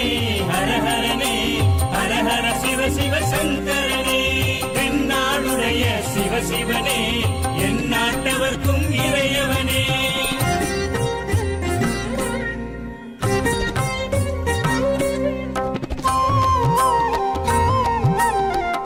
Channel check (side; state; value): both; identical; correlation 1.00